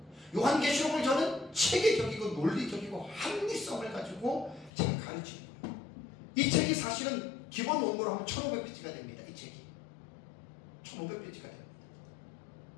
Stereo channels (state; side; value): drops out; right; at 4.7 s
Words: 요한계시록을 저는 체계적이고 논리적이고 합리성을 가지고 제가 가르치는 거예요. 이 책이 사실은 기본 원고로 하면 1500페이지가 됩니다. 이 책이 1500페이지가 됩니다.